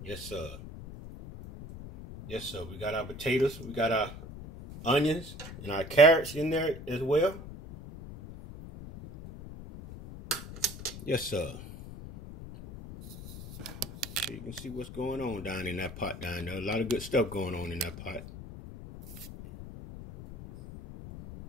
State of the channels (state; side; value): noise; left; rumble, 12 dB below the sound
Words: Yes, sir. Yes, sir. We got our potatoes. We got our onions and our carrots in there as well. Yes, sir. So you can see what's going on down in that pot down there. A lot of good stuff going on in that pot.